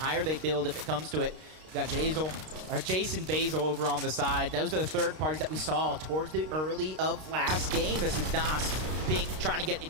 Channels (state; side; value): late; left; 32 ms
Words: higher they build, if it comes to it, you got Jason Basil over on the side. Those are the third parties that we saw towards the early of last game. This is Nas Pink trying to get